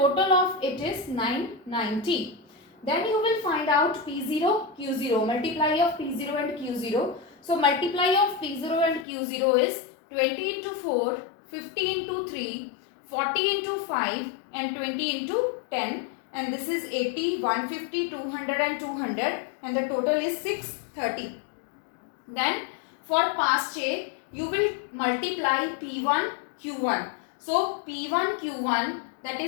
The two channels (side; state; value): right; drops out; at 9.1 s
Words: of it is 990. Then you will find out P0, Q0, multiply of P0 and Q0. So multiply of P0 and Q0 is 20 into 4, 50 into 3, 40 into 5 and 20 into 10, and this is 80, 150, 200 and 200, and the total is 630. Then for Pastier, you will multiply P1 Q1. So P1 Q1, that